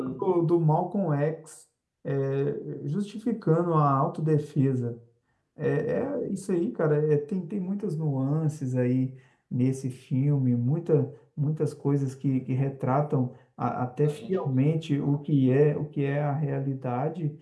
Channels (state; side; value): identical; both; correlation 1.00